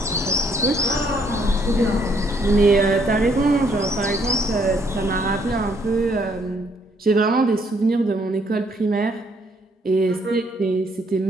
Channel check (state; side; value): normal; both; correlation 0.69